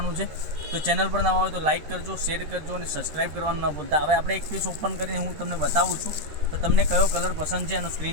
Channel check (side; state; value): left; late; 13 ms